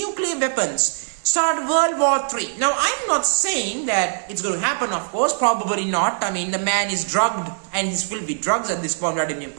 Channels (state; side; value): silent; left; digital silence